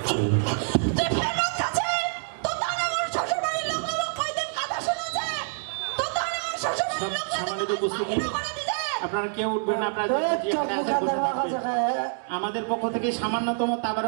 তুই ফেরত কাছে তো তাহলে আমার শ্বশুর বাড়ির লোক কয়দিন কথা শুনেছে তো তাহলে আমার শ্বশুর বাড়ির লোক সম্মানিত উপস্থিতি, আপনারা কেউ উঠবেন না। আপনারা আমাদের পক্ষ থেকে সামান্যতম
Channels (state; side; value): silent; left; digital silence